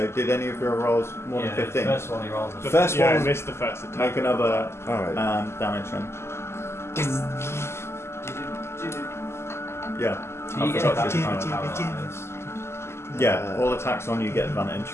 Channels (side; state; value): right; late; 0.12 ms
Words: did any of your rolls more than 15? The first one he rolled was First I one. missed the first attack. Make another Alright. damage then. Yeah. Do you get forgot advantage to- on paralyzed? Yeah, all attacks on you get advantage.